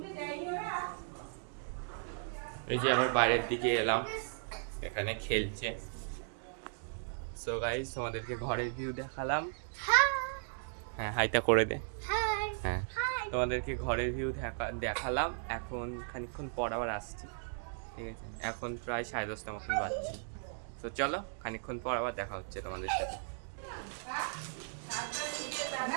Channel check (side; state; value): left; silent; digital silence